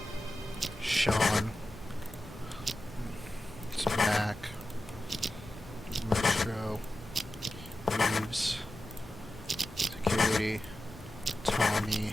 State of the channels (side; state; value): both; normal; correlation 0.93